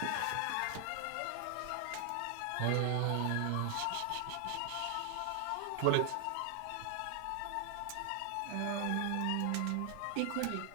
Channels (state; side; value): different; both; correlation 0.00